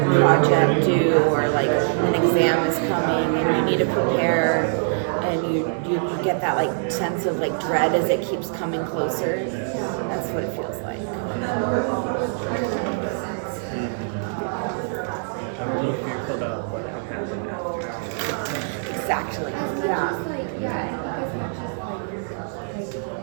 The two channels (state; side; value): silent; left; digital silence